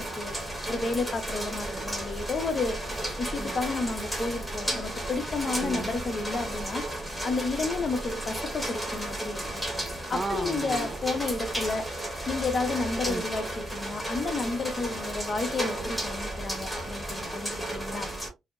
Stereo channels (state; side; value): normal; both; correlation 0.80